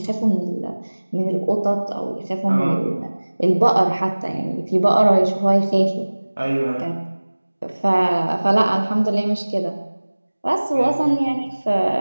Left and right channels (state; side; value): inverted; both; correlation -1.00